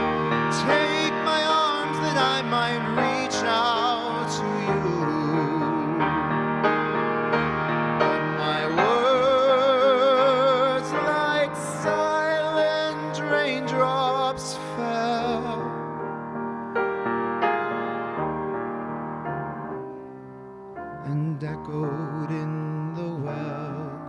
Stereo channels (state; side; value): identical; both; correlation 1.00